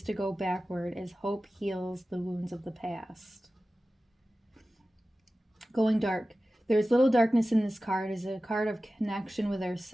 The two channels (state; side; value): normal; both; correlation 0.95